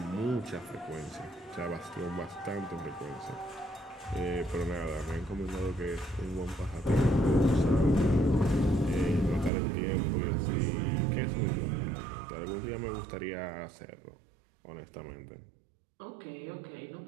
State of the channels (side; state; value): left; drops out; at 9.5 s